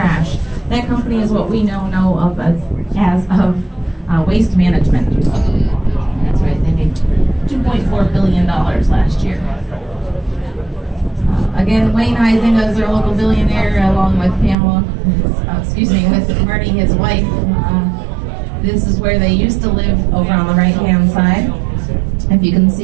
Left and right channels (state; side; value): drops out; left; at 14.6 s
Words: That company is what we know of as waste management. That's right, they made $2.4 billion last year. Again, Wayne Heisinger is our local billionaire, along with Pamela, with Marty, his wife. This is where they used to live over on the right-hand side. If you can